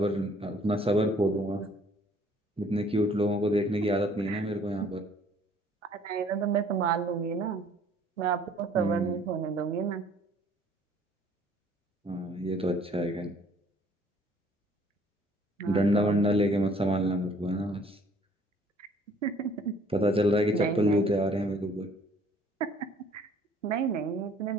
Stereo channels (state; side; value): normal; both; correlation 0.57